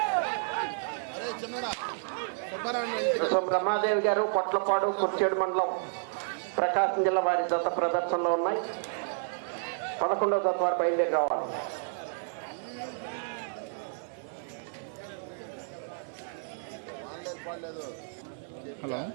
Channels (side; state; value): left; silent; 55 dB below the other